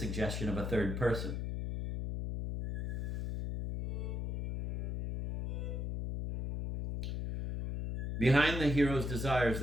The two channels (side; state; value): left; noise; hum, 3 dB below the sound